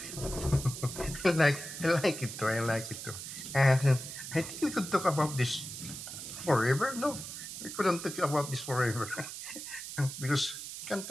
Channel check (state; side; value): noise; right; hiss, 9 dB below the sound